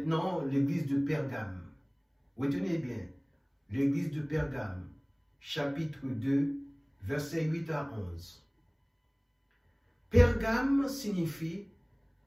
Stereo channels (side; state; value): both; identical; correlation 1.00